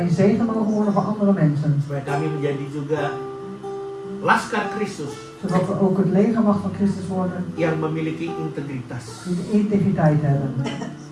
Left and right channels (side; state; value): both; identical; correlation 1.00